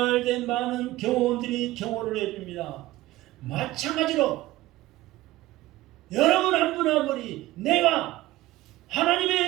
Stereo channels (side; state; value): left; quieter; 17.0 dB